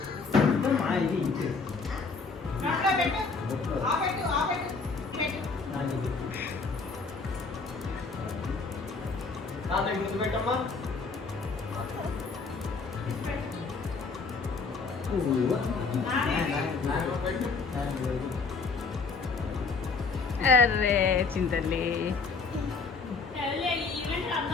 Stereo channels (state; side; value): quieter; right; 4.5 dB